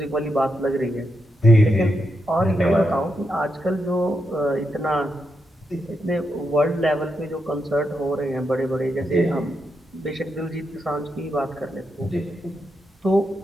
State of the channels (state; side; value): normal; both; correlation 0.84